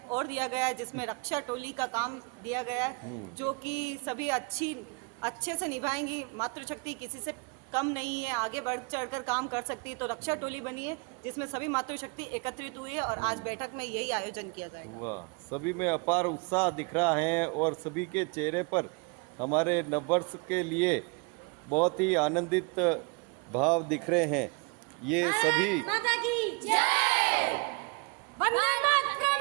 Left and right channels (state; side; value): quieter; left; 32.1 dB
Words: और दिया गया है जिसमें रक्षा टोली का काम दिया गया है, जो कि सभी अच्छे से निभाएंगी। मातृशक्ति किसी से कम नहीं है, आगे बढ़ चढ़कर काम कर सकती है। तो रक्षा टोली बनी है जिसमें सभी मातृशक्ति एकत्रित हुई है और आज बैठक में यही आयोजन किया जाएगा। वाह, सभी में अपार उत्साह दिख रहा है और सभी के चेहरे पर हमारे नववर्ष के लिए बहुत ही आनंदित भाव दिख रहे हैं। ये सभी माता की जय, वंदे मातरम,